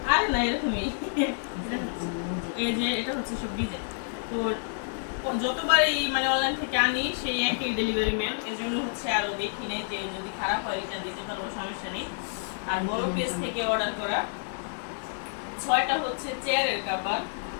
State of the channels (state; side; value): silent; right; 59 dB below the other